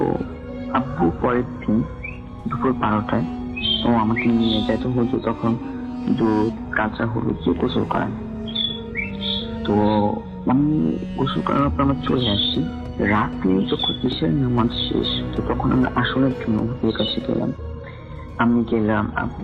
আব্বু পরের দিন দুপুর 12টায় ও আমাকে নিয়ে যায়। তো হুজুর তখন দুধ, কাঁচা হলুদ দিয়ে গোসল করান। তো আমি গোসল করার পর আমরা চলে আসি। রাতে যখন ইশার নামাজ শেষ, তো তখন আমরা আসনের জন্য হুজুরের কাছে গেলাম। আমি গেলাম,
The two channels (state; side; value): identical; both; correlation 1.00